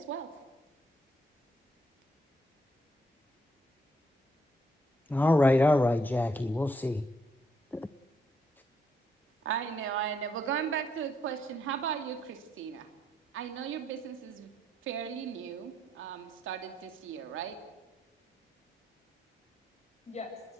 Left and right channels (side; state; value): both; normal; correlation 0.74